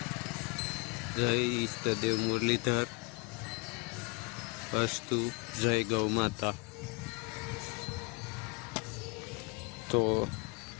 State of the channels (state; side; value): quieter; right; 30.0 dB